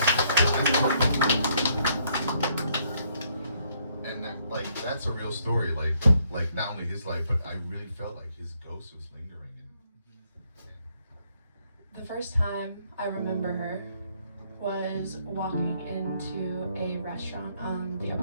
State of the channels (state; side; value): inverted; both; correlation -0.70